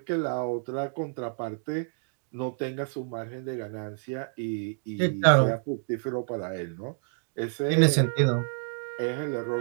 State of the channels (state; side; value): silent; left; digital silence